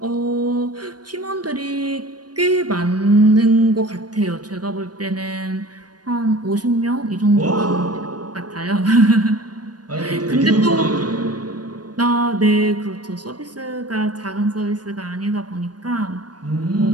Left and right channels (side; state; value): left; late; 0.69 ms